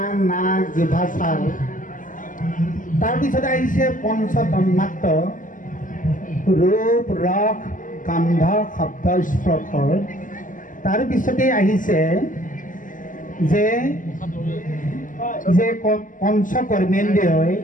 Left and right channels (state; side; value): late; right; 0.38 ms